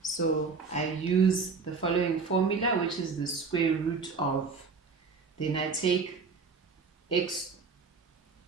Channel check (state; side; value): quieter; left; 4.8 dB